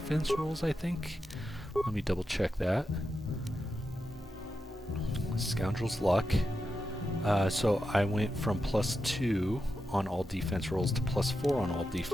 rolls, I think. Let me double check that. Scoundrel's Luck. So I went from +2 on all defense rolls to +4 on all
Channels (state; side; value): normal; both; correlation 0.88